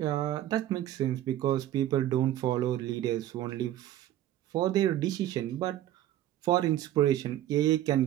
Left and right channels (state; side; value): quieter; left; 13.0 dB